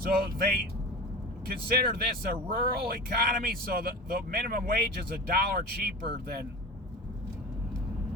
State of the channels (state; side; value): normal; both; correlation 0.33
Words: they consider this a rural economy, so the minimum wage is $1 cheaper than